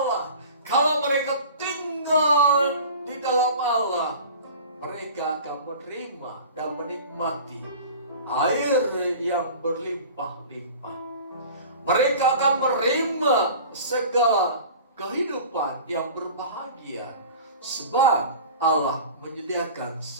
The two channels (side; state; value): both; inverted; correlation -0.40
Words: kalau mereka tinggal di dalam Allah, mereka akan menerima dan menikmati air yang berlimpah-limpah. Mereka akan menerima segala kehidupan yang berbahagia, sebab Allah menyediakan